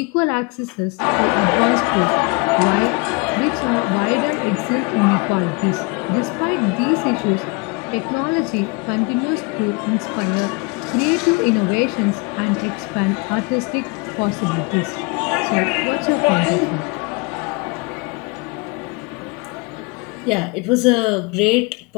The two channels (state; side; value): quieter; right; 29.3 dB